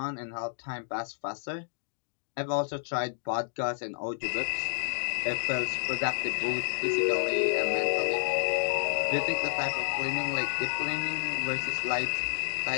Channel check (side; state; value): right; silent; digital silence